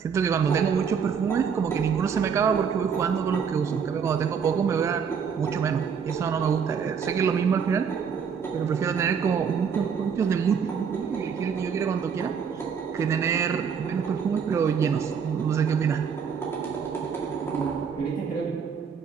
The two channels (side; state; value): left; quieter; 6.7 dB